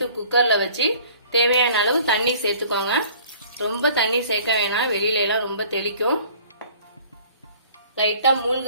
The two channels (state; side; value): inverted; both; correlation -0.51